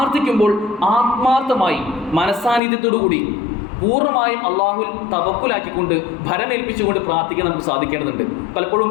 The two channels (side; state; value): right; drops out; at 2.6 s